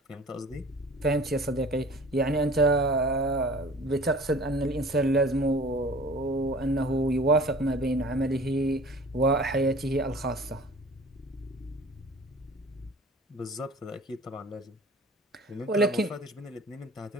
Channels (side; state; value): both; normal; correlation 0.45